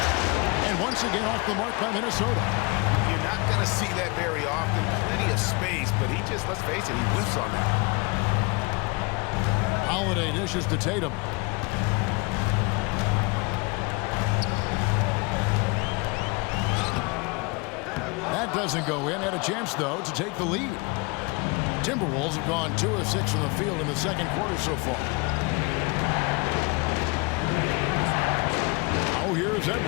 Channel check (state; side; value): quieter; right; 28.3 dB